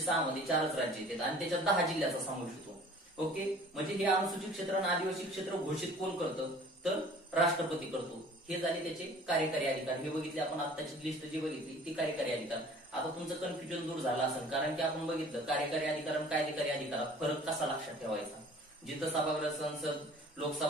6 मध्ये 4च राज्य येतात आणि त्याच्यात 10 जिल्ह्याचा समावेश होतो. ओके, म्हणजे हे अनुसूचित क्षेत्र आणि आदिवासी क्षेत्र घोषित कोण करतं? तर राष्ट्रपती करतो. हे झाले त्याचे कार्यकारी अधिकार. हे बघितले आपण, आत्ताची लिस्ट जी बघितली ती कार्यकारी अधिकार. आता तुमचं कन्फ्युजन दूर झालं असेल, कारण की आपण बघितलं कार्यकारी अधिकार आणि कायदेकारी अधिकारात फरक कसा लक्षात ठेवायचा. जिथं सभागृह, संसद,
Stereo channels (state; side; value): normal; both; correlation 0.49